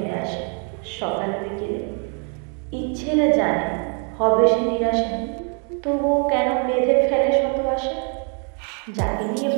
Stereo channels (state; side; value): quieter; left; 37.0 dB